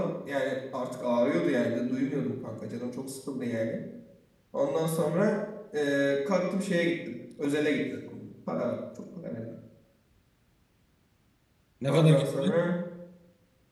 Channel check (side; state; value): both; identical; correlation 1.00